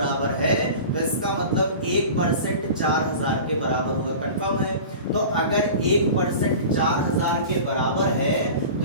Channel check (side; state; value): both; inverted; correlation -0.36